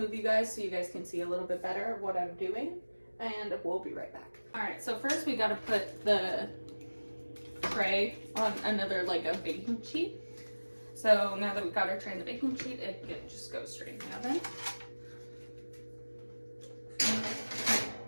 you guys so you guys can see a little bit better what I'm doing, and we'll be right back. All right, so first we gotta put the tray on another, like a baking sheet. So now that we've got our tray on the baking sheet, it can just go straight in the oven.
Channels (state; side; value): inverted; both; correlation -1.00